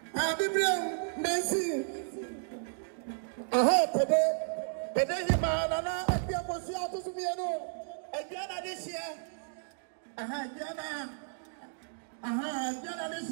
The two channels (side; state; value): left; silent; digital silence